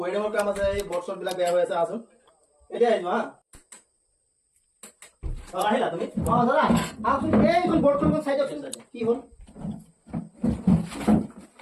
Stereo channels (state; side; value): identical; both; correlation 1.00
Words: ৱেডিঙৰ কাম আছে, এই বৰ্ড বিলাক বেয়া হৈ আছে, আছোন এতিয়া আহিবা হা। আহিলা তুমি? অ দাদা আহকচোন এইখন বৰ্ডখন চাই দিয়কচোন কি হ'ল